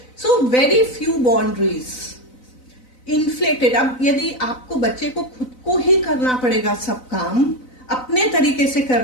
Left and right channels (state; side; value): late; right; 4.0 ms